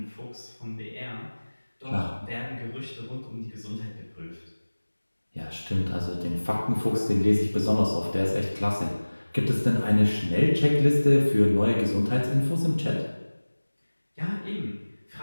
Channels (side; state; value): both; inverted; correlation -1.00